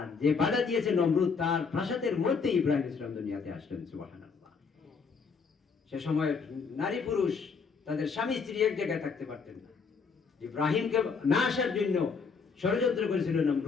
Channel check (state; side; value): quieter; right; 5.4 dB